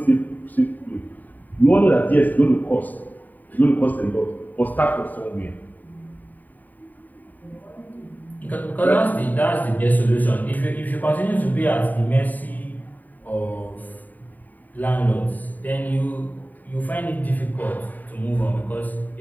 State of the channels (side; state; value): right; late; 0.084 ms